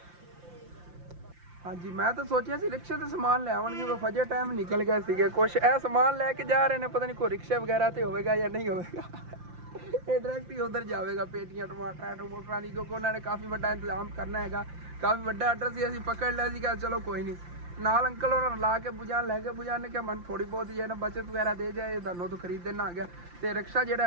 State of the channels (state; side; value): late; left; 5.8 ms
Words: ਹਾਂਜੀ ਮੈਂ ਤਾਂ ਸੋਚਿਆ ਸੀ ਰਿਕਸ਼ੇ ਤੇ ਸਮਾਨ ਲੈ ਆਉਣਗੇ, ਉਹ ਫਜੇ ਟਾਈਮ ਨਿਕਲ ਗਏ ਸੀਗੇ। ਕੁਛ ਇਹ ਸਮਾਨ ਲੈ ਕੇ ਜਾ ਰਹੇ ਨੇ, ਪਤਾ ਨਹੀਂ ਕੋਈ ਰਿਕਸ਼ੇ ਵਗੈਰਾ ਤੇ ਹੋਵੇਗਾ ਜਾਂ ਨਹੀਂ ਹੋਵੇਗਾ। ਇਹ ਡਾਇਰੈਕਟ ਹੀ ਉਧਰ ਜਾਵੇਗਾ, ਪੇਟੀਆਂ ਟਮਾਟਰਾਂ ਦੀ, ਕਿਉਂਕਿ ਉਹਨਾਂ ਨੇ ਕਾਫੀ ਵੱਡਾ ਇੰਤਜ਼ਾਮ ਕਰਨਾ ਹੈਗਾ। ਕਾਫੀ ਵੱਡਾ ਆਰਡਰ ਸੀ, ਅਸੀਂ ਪਕੜ ਲਿਆ ਸੀਗਾ। ਚਲੋ ਕੋਈ ਨਹੀਂ, ਨਾਲ ਅੰਕਲ ਉਹਨਾਂ ਨੂੰ ਲਾ ਕੇ ਬੁਝਾਣ ਲੈ ਕੇ, ਬੁਝਾਣ ਨੇ ਕਿਹਾ ਮੈਨੂੰ ਥੋੜੀ ਬਹੁਤ ਜਿਹੜਾ ਬਚਤ ਵਗੈਰਾ ਦੇ ਜਾਏ, ਤੁਹਾਨੂੰ ਤੋਂ ਖਰੀਦ ਦੇਣਾ ਆ ਗਿਆ। ਤੇ ਰਿਕਸ਼ਾ ਜਿਹੜਾ